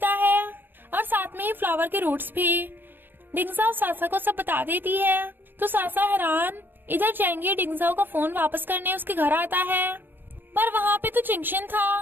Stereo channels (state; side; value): late; left; 0.095 ms